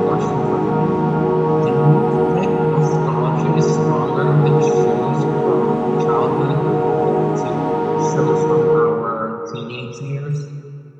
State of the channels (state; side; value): identical; both; correlation 1.00